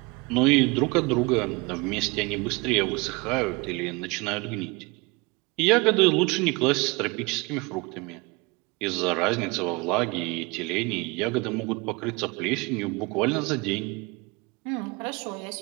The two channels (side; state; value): left; quieter; 26.4 dB